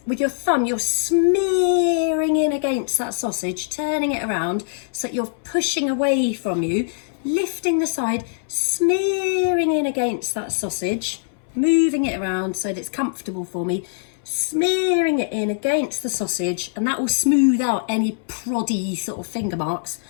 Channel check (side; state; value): right; silent; 62 dB below the other